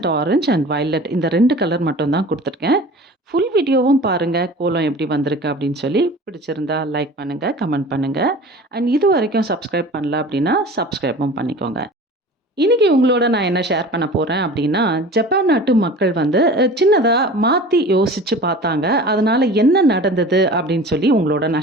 ஆரஞ்ச் அண்ட் வயலட் இந்த 2 கலர் மட்டும் தான் குடுத்துருக்கேன். ஃபுல் வீடியோவும் பாருங்க, கோலம் எப்படி வந்திருக்கு அப்படின்னு சொல்லி. பிடிச்சிருந்தா லைக் பண்ணுங்க, கமெண்ட் பண்ணுங்க. அண்ட் இதுவரைக்கும் சப்ஸ்கிரைப் பண்ணல அப்படின்னா, சப்ஸ்கிரைபும் பண்ணிக்கோங்க. இன்னைக்கு உங்களோட நான் என்ன ஷேர் பண்ண போறேன் அப்படின்னா, ஜப்பான் நாட்டு மக்கள் வந்து சின்னதா மாத்தி யோசிச்சு பார்த்தாங்க. அதனால என்ன நடந்தது அப்படின்னு சொல்லி உங்களோட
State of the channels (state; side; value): normal; both; correlation 0.40